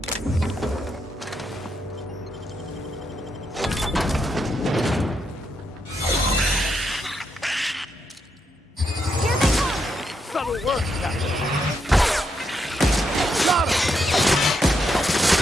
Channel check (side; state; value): both; normal; correlation 0.80